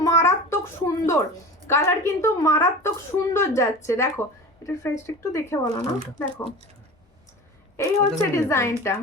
মারাত্মক সুন্দর, কালার কিন্তু মারাত্মক সুন্দর যাচ্ছে। দেখো এটার প্রাইসটা একটু দেখে বলো না। দেখো এই হচ্ছে ডিজাইনটা,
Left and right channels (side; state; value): both; normal; correlation 0.34